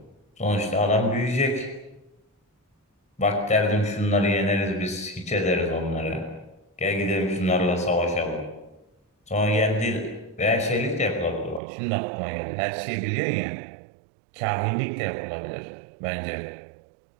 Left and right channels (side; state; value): left; drops out; at 11.6 s